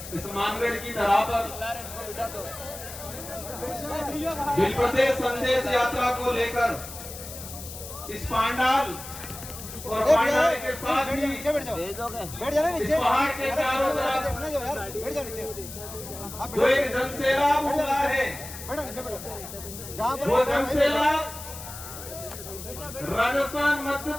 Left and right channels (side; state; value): left; noise; hiss, 12 dB below the sound